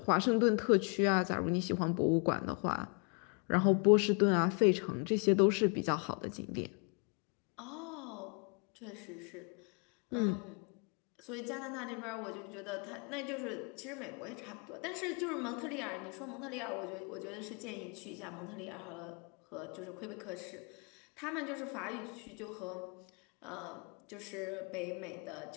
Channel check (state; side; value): quieter; right; 36.8 dB